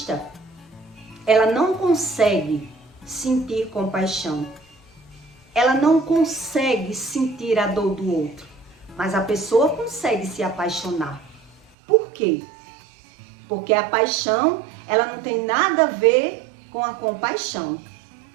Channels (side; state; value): left; drops out; at 11.7 s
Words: ela não consegue sentir compaixão. Ela não consegue sentir a dor do outro, mas a pessoa consegue se apaixonar. Por quê? Porque a paixão, ela não tem nada a ver com a compaixão.